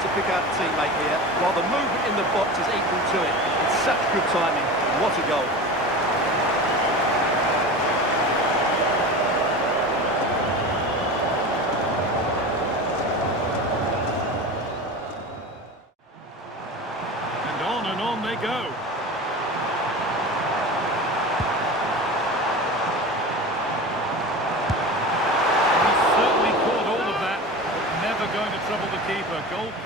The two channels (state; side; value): normal; both; correlation 0.31